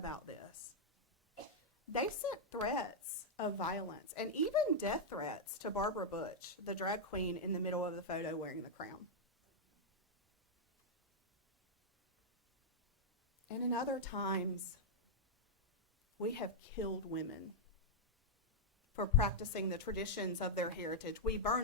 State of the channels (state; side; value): normal; both; correlation -0.04